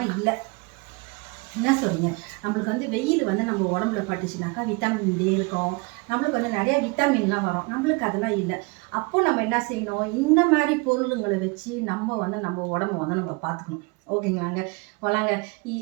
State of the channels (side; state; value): left; quieter; 28.6 dB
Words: இல்லை. என்ன சொல்றீங்க? நம்மளுக்கு வந்து வெயில் வந்து நம்ம உடம்புல பட்டுச்சுனாக்கா விட்டமின் டி இருக்கும். நம்மளுக்கு வந்து நிறைய விட்டமின்லாம் வரும். நம்மளுக்கு அதெல்லாம் இல்லை. அப்போ நம்ம என்ன செய்யணும், இந்த மாதிரி பொருளுங்களை வச்சு நம்ம வந்து நம்ம உடம்ப வந்து நம்ம பார்த்துக்கணும். ஓகேங்களாங்க. வளாங்க.